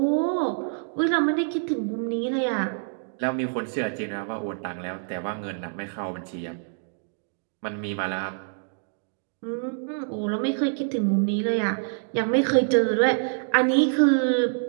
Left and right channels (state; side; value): silent; left; digital silence